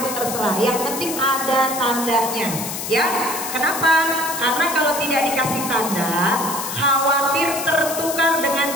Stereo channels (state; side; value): noise; left; hiss, 6 dB below the sound